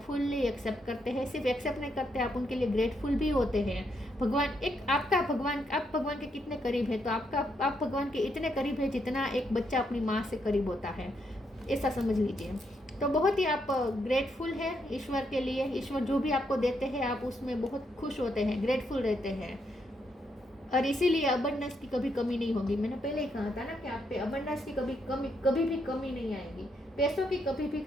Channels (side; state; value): both; normal; correlation 0.78